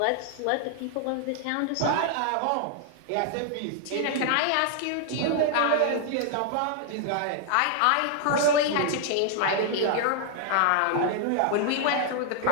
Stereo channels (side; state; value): both; different; correlation 0.00